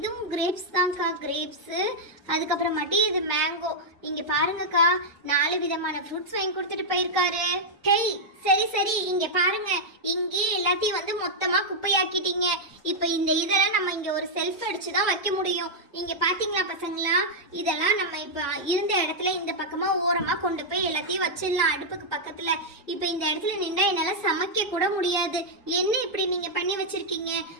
கிரேப்ஸ் தான்க்கா, கிரேப்ஸு. அதுக்கப்புறமாட்டி இது மேங்கோ. இங்க பாருங்கக்கா, 4 விதமான ஃப்ரூட்ஸ் வாங்கி கொடுத்துட்டு போயிருக்காரு. ஹேய் சரி சரி, இங்க பாருங்க, இங்கே எல்லாத்தையும் வந்து மொத்தமா குப்பையாக்கிட்டீங்க. இப்ப இந்த இதெல்லாம் நம்ம இங்க ஒரு செல்ஃப் அடிச்சு தான் வைக்க முடியும். இங்க பாத்தீங்களா பசங்களா, இதெல்லாம் நம்ம இப்ப இருந்த இடத்துல இந்த பக்கமா ஓரமா கொண்டு போய் எல்லாத்தையும் வச்சிடலாம் அடுப்புக்கு பக்கத்துல. இப்ப இந்த இடத்துல நின்றா என்னால சமைக்க கூட முடியாது. என்ன இப்படி நீங்க பண்ணி வச்சிருக்கீங்க?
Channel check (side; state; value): both; normal; correlation -0.05